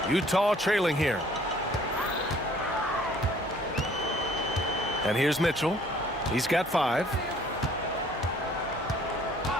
Utah trailing here. And here's Mitchell. He's got 5.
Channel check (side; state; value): both; normal; correlation 0.57